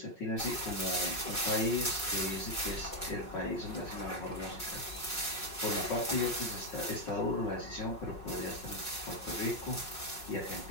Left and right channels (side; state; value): right; late; 5.5 ms